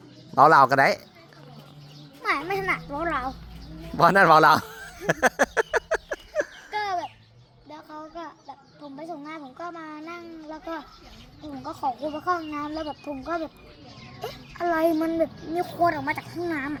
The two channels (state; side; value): identical; both; correlation 1.00